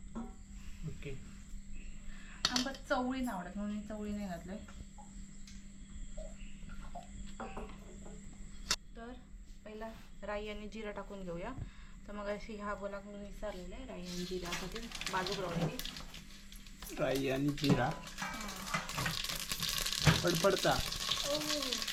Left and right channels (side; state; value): both; identical; correlation 1.00